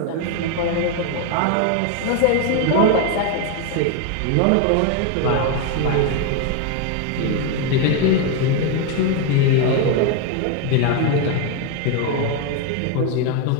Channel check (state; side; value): different; both; correlation 0.01